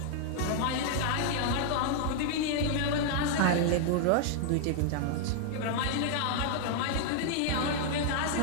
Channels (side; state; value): both; different; correlation 0.00